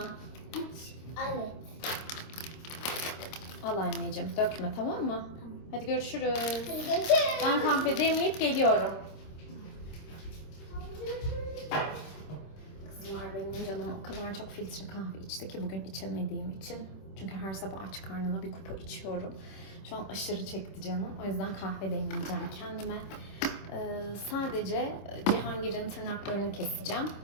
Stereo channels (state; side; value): late; right; 26 ms